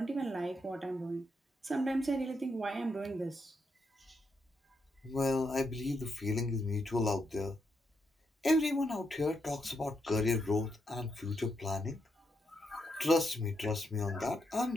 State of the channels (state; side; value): normal; both; correlation 0.80